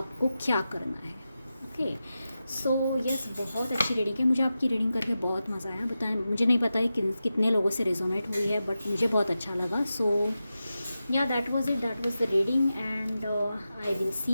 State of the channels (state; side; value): inverted; both; correlation -0.92